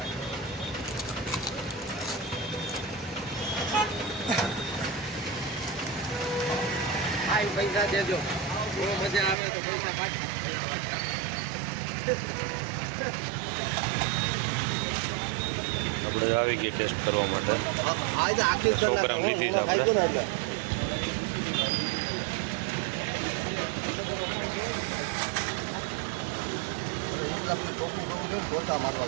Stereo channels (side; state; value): left; drops out; at 9.3 s